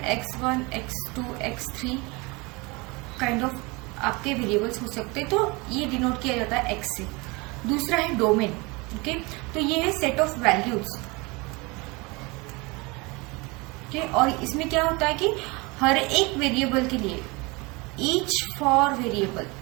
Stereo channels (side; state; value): left; quieter; 26.1 dB